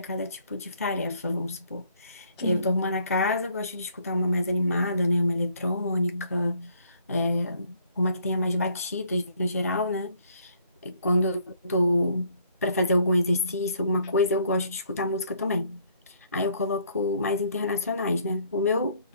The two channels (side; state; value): both; inverted; correlation -0.64